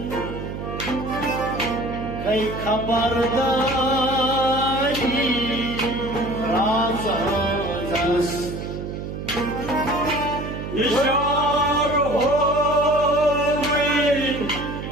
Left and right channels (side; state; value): right; noise; hum, 7 dB below the sound